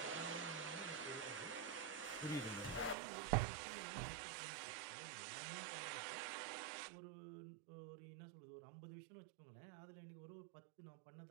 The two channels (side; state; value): left; drops out; at 3.0 s